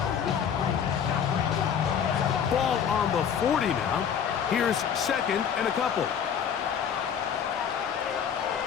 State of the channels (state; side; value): quieter; right; 7.9 dB